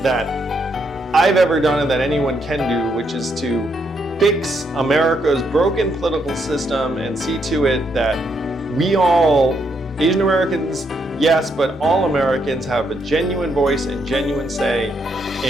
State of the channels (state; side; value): normal; both; correlation 0.76